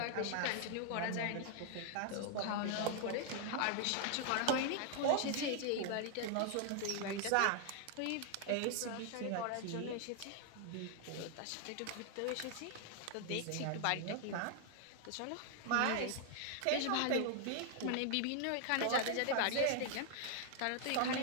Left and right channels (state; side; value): different; both; correlation 0.00